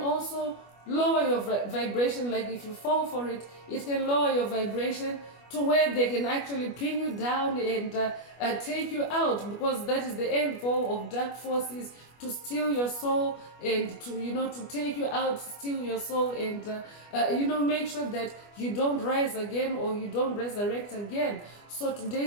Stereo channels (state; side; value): late; right; 25 ms